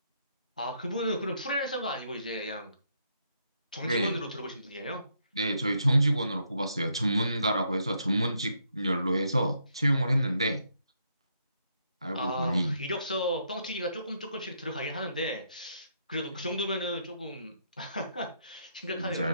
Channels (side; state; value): both; inverted; correlation -0.75